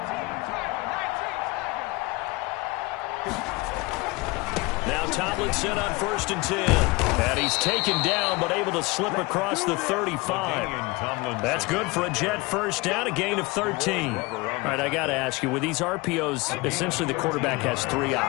Now Tomlinson on 1st and 10. And he's taken down, but able to slip across the 35. That's good for a Jet first down, a gain of 13. All right, I got to ask you, with these RPOs, essentially the quarterback has 3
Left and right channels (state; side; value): quieter; right; 23.6 dB